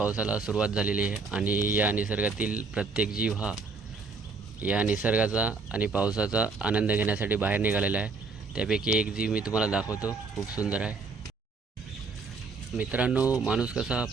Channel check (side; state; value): left; quieter; 4.3 dB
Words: सुरुवात झालेली आहे आणि या निसर्गातील प्रत्येक जीव हा या निसर्गाचा आणि पावसाचा आनंद घेण्यासाठी बाहेर निघालेला आहे. त्यापैकी एक जीव मी तुम्हाला दाखवतो, खूप सुंदर आहे. मित्रांनो, माणूस कसा